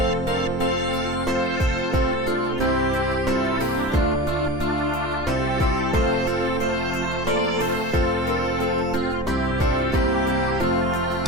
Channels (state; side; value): normal; both; correlation 0.29